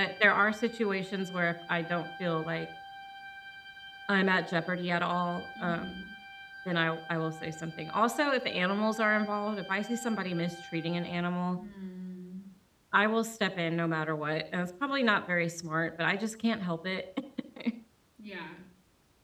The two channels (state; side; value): identical; both; correlation 1.00